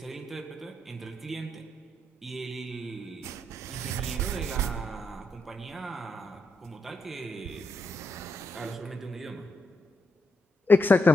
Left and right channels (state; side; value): normal; both; correlation 0.81